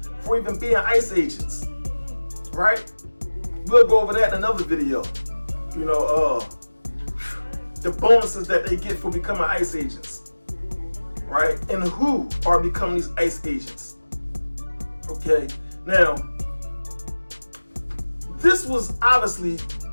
for even being ICE agents, right? We'll go over that in another video. The bonuses that they get for becoming ICE agents, right? And who are becoming these ICE agents. Okay, now, this was obviously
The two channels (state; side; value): inverted; both; correlation -1.00